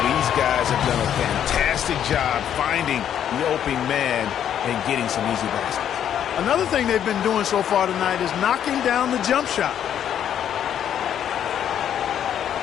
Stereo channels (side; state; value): right; quieter; 9.7 dB